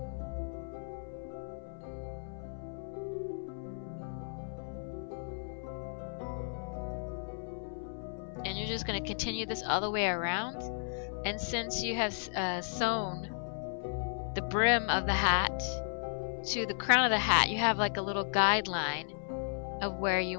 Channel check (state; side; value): silent; right; 55 dB below the other